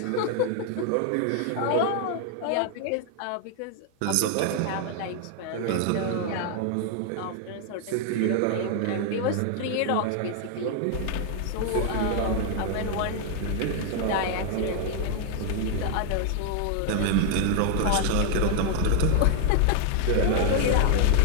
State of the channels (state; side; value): different; both; correlation 0.00